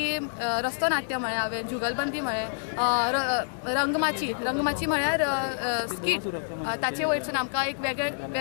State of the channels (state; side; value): silent; right; 58 dB below the other